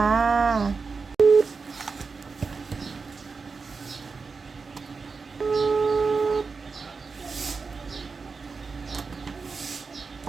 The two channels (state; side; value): quieter; left; 4.7 dB